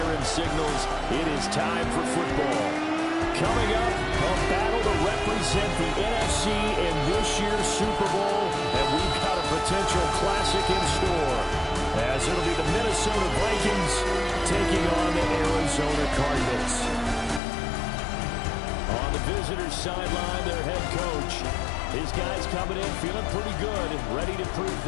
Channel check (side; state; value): right; drops out; at 17.4 s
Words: signals it is time for football. Coming up, a battle to represent the NFC in this year's Super Bowl, and we've got a potential classic in store, as it'll be the Minnesota Vikings taking on the Arizona Cardinals. On the visitors' sideline, their head coach. His guys coming in feeling pretty good and ready to prove